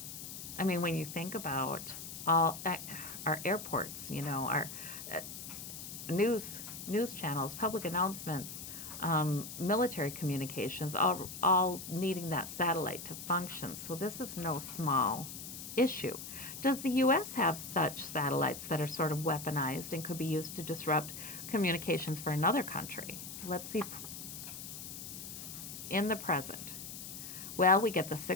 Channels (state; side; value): noise; left; hiss, 10 dB below the sound